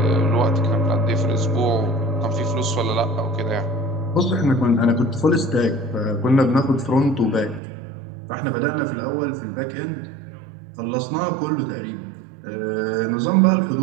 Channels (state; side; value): drops out; left; at 7.6 s